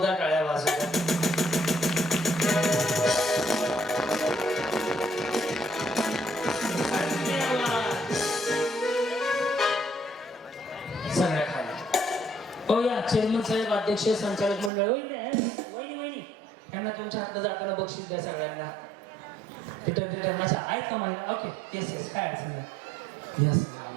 टाळ्या वाजवतात सगळ्या खाली हो या चेअरमन साहेब अध्यक्ष संचालक मंडळ वहिनी वहिनी यांना तुमच्या हातात जाताना बक्षीस द्या सगळ्यांना तिथं माझ्या आहेत का मला ओके येस येस काय अडचण नाही यस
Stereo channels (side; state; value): left; drops out; at 14.7 s